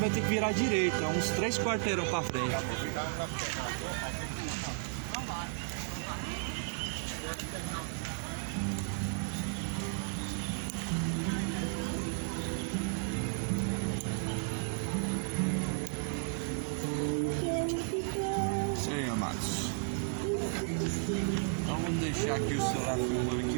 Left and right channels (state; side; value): silent; left; digital silence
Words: ter que virar direita, uns 3 quarteirão pra frente. Isso aí, amados. Então vamos deixar aqui o celular filmando aqui e